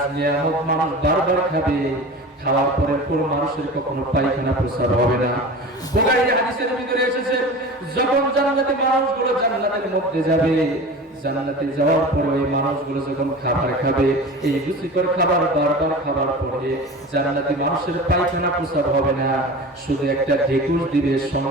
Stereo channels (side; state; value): both; normal; correlation 0.34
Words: নিয়ামত মানুষ বারবার খাবে। খাওয়ার পরে কোন মানুষের কখনো পায়খানা প্রস্রাব হবে না। বুখারী হাদিসের ভিতরে এসেছে, যখন জান্নাতি মানুষগুলো জান্নাতের মধ্যে যাবে, জান্নাতে যাওয়ার পরে এই মানুষগুলো যখন খাবার খাবে, এই রুচিকর খাবার বারবার খাবার পরে জান্নাতি মানুষের পায়খানা প্রস্রাব হবে না, শুধু একটা ঢেকুর দিবে,